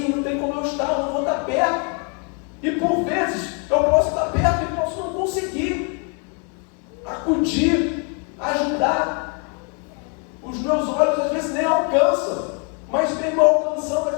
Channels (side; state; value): right; quieter; 38.1 dB